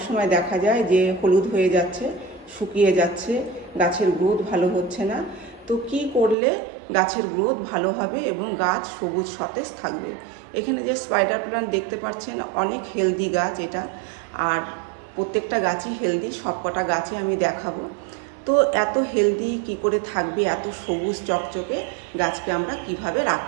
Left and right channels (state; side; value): drops out; left; at 6.4 s